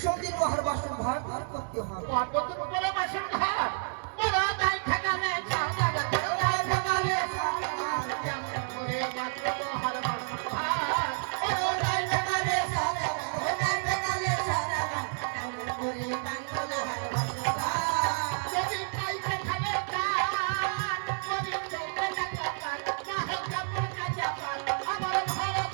লোহার বাসন ভার ভার করতে হবে। পর্বতের উপরে বাসন ঘর বড় দাই ঠেকালে চাঁদা বড় দাই ঠেকালে চাঁদা কেমন করে বাঁধবো লোহার বাসন ঘর বড় দাই ঠেকালে চাঁদা বড় দাই ঠেকালে চাঁদা কেমন করে বাঁধবো লোহার বাসন ঘর যদি পাই ঠেকালে চাঁদ যদি চলতে টাকা পান না হয় কাপড় কাঁচা পান আমার ঘর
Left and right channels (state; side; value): silent; left; 58 dB below the other